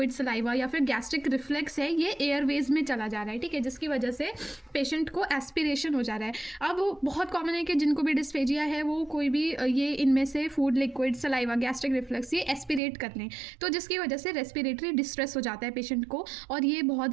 सलाइवा या फिर गैस्ट्रिक रिफ्लेक्स है ये एयरवेज में चला जा रहा है। ठीक है। जिसकी वजह से पेशेंट को एस्पिरेशन हो जा रहा है। अब बहुत कॉमन है कि जिनको भी डिस्फेजिया है वो कोई भी ये इनमें से food, liquid, saliva, gastric reflex ये एस्पिरेट कर लें, तो जिसकी वजह से रेस्पिरेटरी डिस्ट्रेस हो जाता है पेशेंट को, और ये बहुत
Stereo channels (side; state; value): left; drops out; at 12.8 s